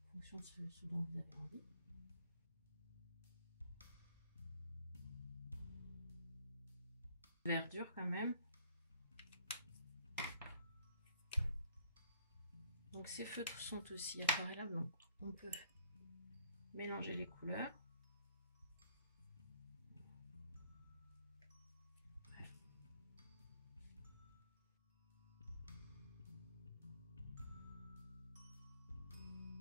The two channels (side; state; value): both; inverted; correlation -0.61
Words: en fonction de ce dont vous avez envie. Verdure quand même. Donc ces feutres sont aussi aquarellables, donc on peut mélanger les couleurs.